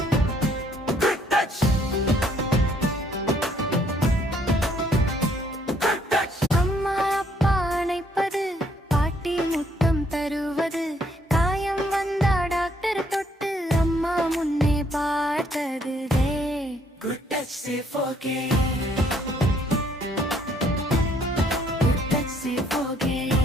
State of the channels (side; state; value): both; normal; correlation 0.67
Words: Good touch, say forget. Good touch, say forget.